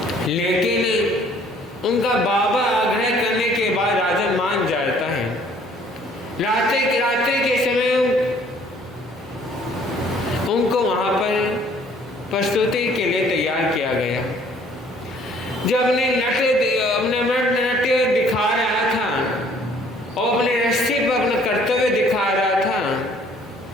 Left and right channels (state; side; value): normal; both; correlation 0.58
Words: लेकिन उनका बाबा आग्रह करने के बाद राजा मान जाता है। रात्रि के समय उनको वहां पर प्रस्तुति के लिए तैयार किया गया। जब अपने नृत्य दिखा रहा था और अपने रस्सी पर अपना कर्तव्य दिखा रहा था,